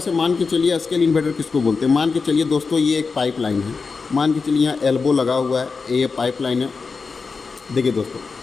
मान के चलिए, स्केल इन्वर्टर किसको बोलते हैं, मान के चलिए दोस्तों, ये एक पाइपलाइन है, मान के चलिए यहाँ एल्बो लगा हुआ है, ये पाइपलाइन है। देखिए दोस्तों,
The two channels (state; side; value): quieter; right; 4.7 dB